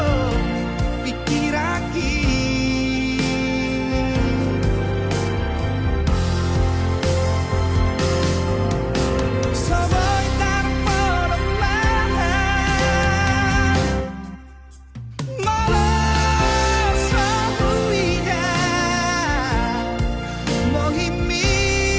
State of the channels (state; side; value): identical; both; correlation 1.00